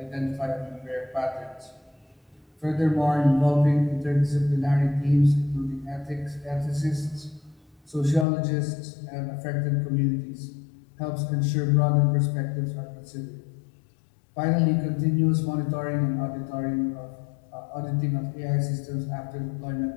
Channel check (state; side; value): drops out; right; at 8.2 s